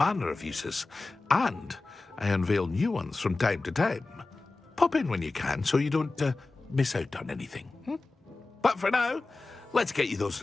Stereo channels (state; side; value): quieter; right; 3.5 dB